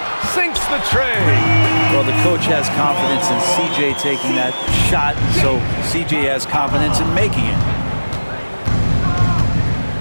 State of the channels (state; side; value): inverted; both; correlation -1.00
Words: Sinks the tray. Well, the coach has confidence in CJ taking that shot, so CJ has confidence in making it.